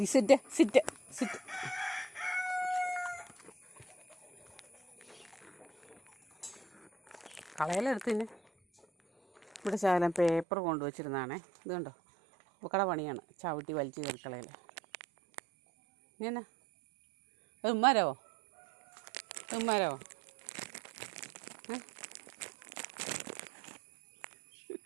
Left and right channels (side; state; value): left; drops out; at 10.5 s